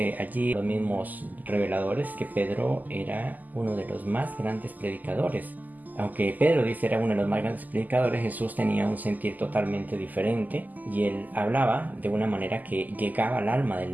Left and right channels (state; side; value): late; left; 0.082 ms